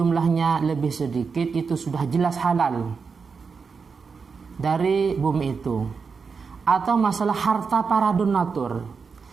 lebih sedikit itu sudah jelas halal dari bumi itu. Atau masalah harta para donatur.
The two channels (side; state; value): left; quieter; 5.3 dB